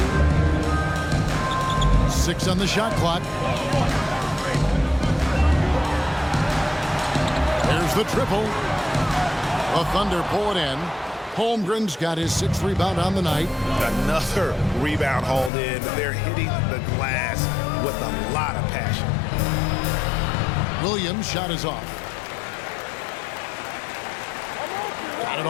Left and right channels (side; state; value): right; drops out; at 15.5 s